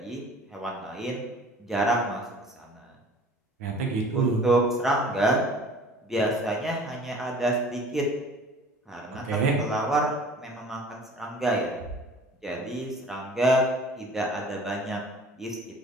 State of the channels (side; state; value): both; normal; correlation 0.47